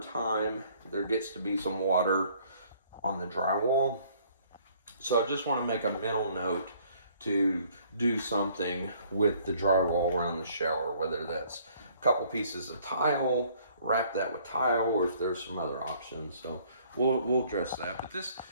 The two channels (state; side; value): inverted; both; correlation -0.60